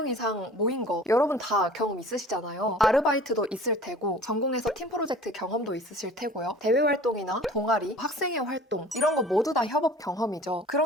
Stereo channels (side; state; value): both; normal; correlation 0.46